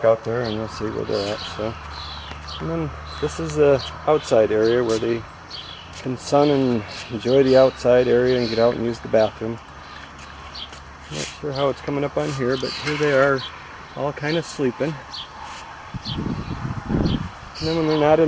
out there and we'll see where they're at. So, and then this is the outside area where they can sun and enjoy the outside area and get out and use the bathroom. Not sure how it's coming up on here, but here they are, all kind of sleeping. And then when they're not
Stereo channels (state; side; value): identical; both; correlation 1.00